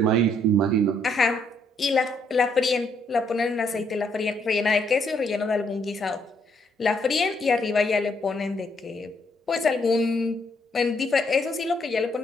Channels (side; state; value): both; normal; correlation 0.71